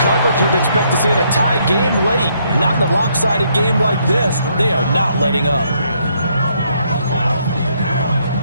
coverage you'd expect to see in a tie game late. Not in a lopsided game like this. They are not letting up.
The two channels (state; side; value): inverted; both; correlation -0.72